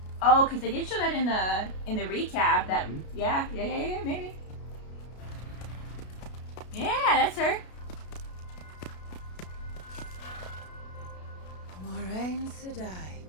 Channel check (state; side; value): late; right; 33 ms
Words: Oh, because they did show that in the recap. That yeah, maybe. Yeah, that's her. Moraine Sedai.